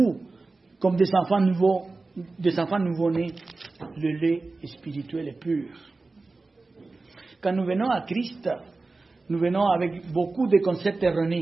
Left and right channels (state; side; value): quieter; left; 3.5 dB